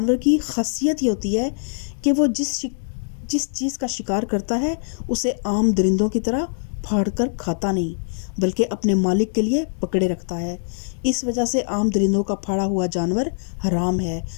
کی خاصیت یہ ہوتی ہے کہ وہ جس چیز کا شکار کرتا ہے اسے عام درندوں کی طرح پھاڑ کر کھاتا نہیں بلکہ اپنے مالک کے لیے پکڑے رکھتا ہے۔ اس وجہ سے عام درندوں کا پھاڑا ہوا جانور حرام ہے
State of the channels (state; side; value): silent; right; digital silence